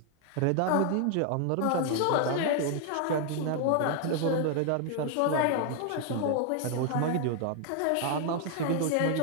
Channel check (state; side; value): different; both; correlation 0.00